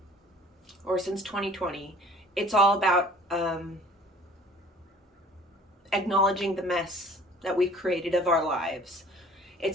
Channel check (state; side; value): normal; both; correlation 0.50